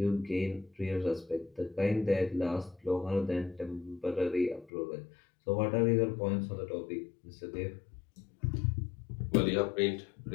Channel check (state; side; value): drops out; right; at 4.7 s